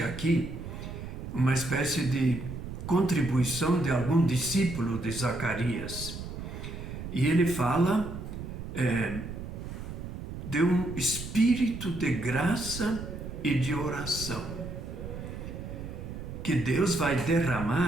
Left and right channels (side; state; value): right; noise; rumble, 8 dB below the sound